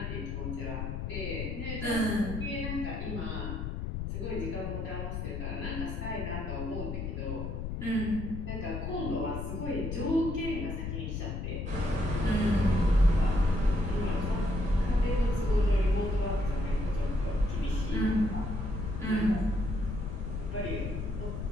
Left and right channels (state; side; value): noise; left; rumble, 4 dB below the sound